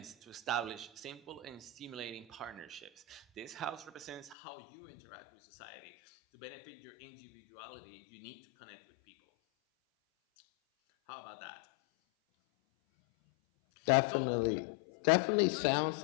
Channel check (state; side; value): drops out; right; at 4.4 s